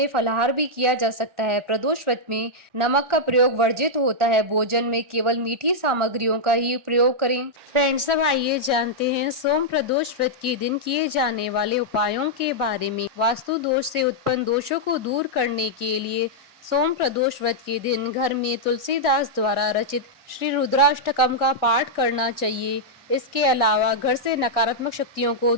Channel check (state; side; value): late; left; 1.4 ms